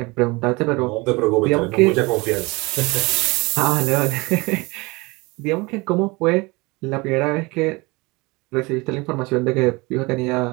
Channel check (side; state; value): left; quieter; 24.8 dB